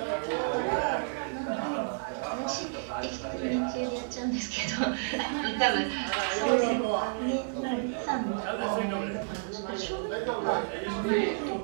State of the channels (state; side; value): silent; left; digital silence